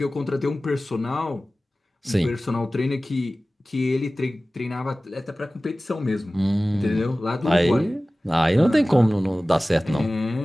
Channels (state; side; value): normal; both; correlation 0.97